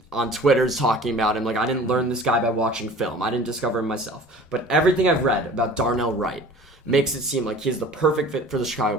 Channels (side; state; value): both; normal; correlation 0.45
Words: on Twitter's talking about him. I didn't learn this guy by watching film. I didn't discover him myself. But everything I've read about Darnell Wright makes it seem like he's the perfect fit for the Chicago